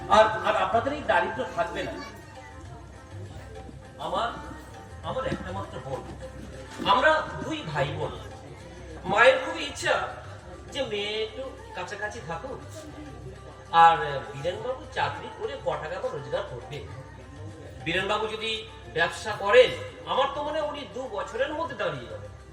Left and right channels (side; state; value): both; identical; correlation 1.00